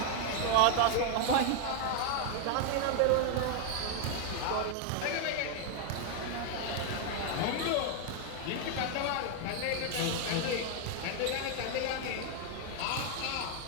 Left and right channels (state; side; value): different; both; correlation 0.00